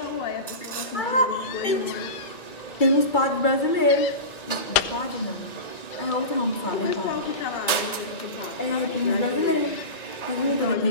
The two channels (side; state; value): right; late; 1.9 ms